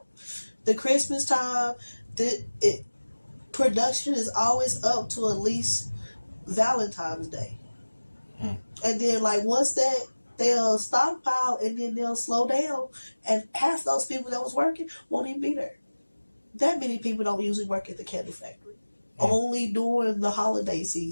The Christmas time, production is always up to at least Valentine's Day. And then, like, once that, they'll stockpile and then they'll slow down. And half those people that was working won't even be there. That many people don't usually work at the candy factory. Only during the holiday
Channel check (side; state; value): both; inverted; correlation -1.00